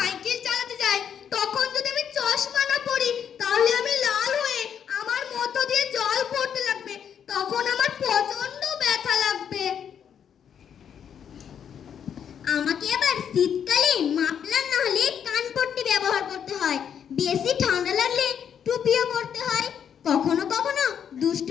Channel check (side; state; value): right; quieter; 8.3 dB